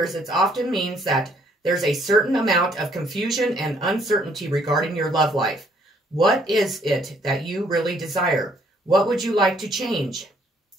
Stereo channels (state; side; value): normal; both; correlation 0.65